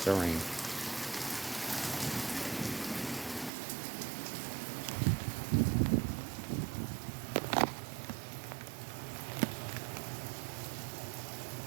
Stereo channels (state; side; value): drops out; left; at 3.5 s